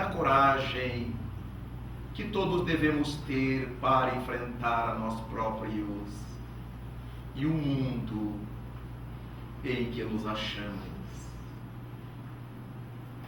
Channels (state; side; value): identical; both; correlation 1.00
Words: coragem que todos devemos ter para enfrentar a nós próprios e o mundo em que nos achamos.